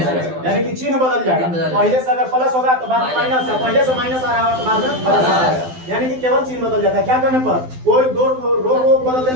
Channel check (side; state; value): left; late; 12 ms